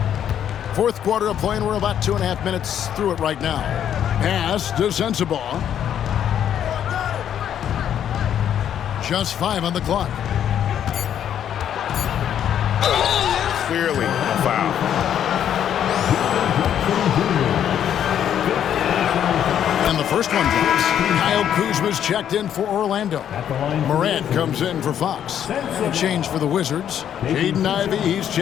Fourth quarter of play, and we're about 2.5 minutes through it right now. Pass to Sensabaugh. Just 5 on the clock. Clearly a foul. And the first one drops. Kyle Kuzma's checked in for Orlando. Morant comes in for Fox. And a change for the Wizards. Jaden Ivey, he's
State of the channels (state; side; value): quieter; right; 9.7 dB